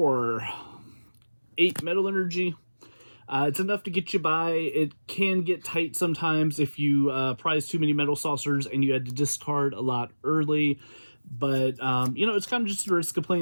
8 metal energy. It's enough to get you by. It can get tight sometimes if you prize too many metal saucers and you had to discard a lot early. But, it's kind of just a risk of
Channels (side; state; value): both; inverted; correlation -1.00